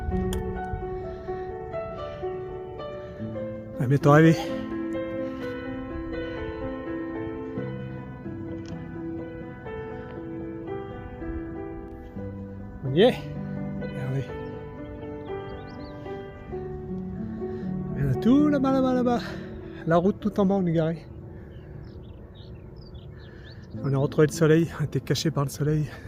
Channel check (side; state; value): both; identical; correlation 1.00